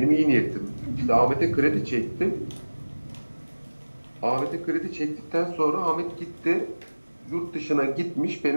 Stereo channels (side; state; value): both; inverted; correlation -1.00